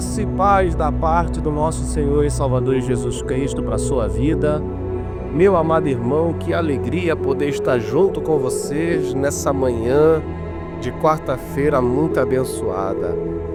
e paz da parte do nosso Senhor e Salvador Jesus Cristo para a sua vida. Meu amado irmão, que alegria poder estar junto com vocês nessa manhã de quarta-feira muito abençoada.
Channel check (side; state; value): both; identical; correlation 1.00